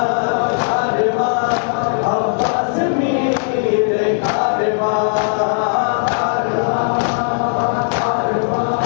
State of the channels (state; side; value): silent; right; 56 dB below the other